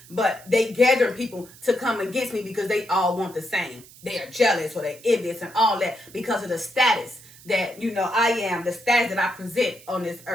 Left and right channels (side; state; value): right; noise; hiss, 22 dB below the sound